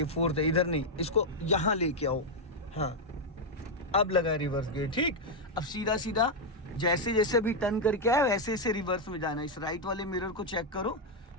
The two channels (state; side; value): normal; both; correlation 0.00